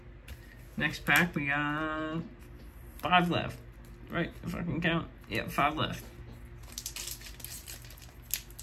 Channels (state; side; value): identical; both; correlation 1.00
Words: Next pack, we got 5 left. Right, if I can count. Yeah, 5 left.